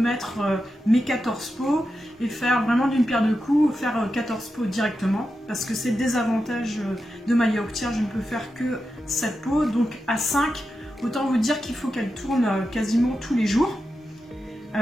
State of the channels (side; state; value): both; normal; correlation 0.89